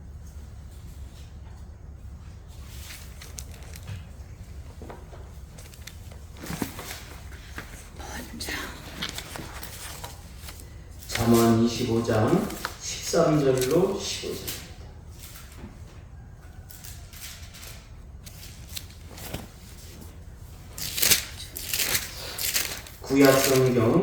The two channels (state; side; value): identical; both; correlation 1.00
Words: 잠언 25장 13절로 15절입니다.